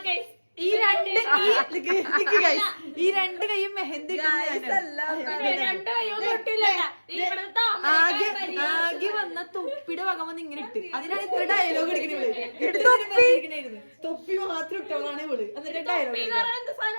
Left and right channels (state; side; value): inverted; both; correlation -1.00